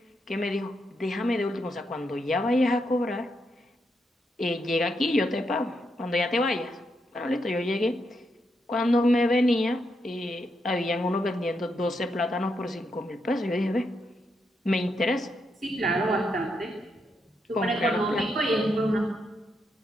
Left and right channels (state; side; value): normal; both; correlation 0.81